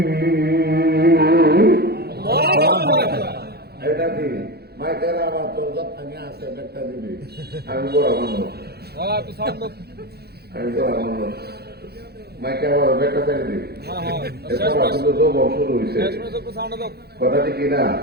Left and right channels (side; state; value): left; late; 0.46 ms